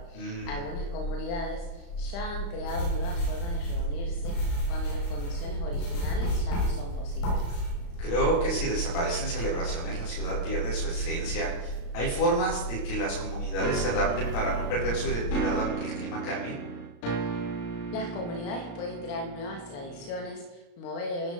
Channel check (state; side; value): late; right; 35 ms